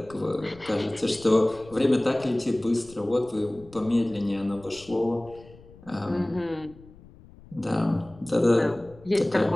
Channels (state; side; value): noise; left; rumble, 22 dB below the sound